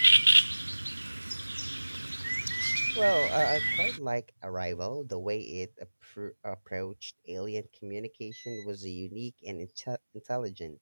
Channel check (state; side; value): inverted; both; correlation -1.00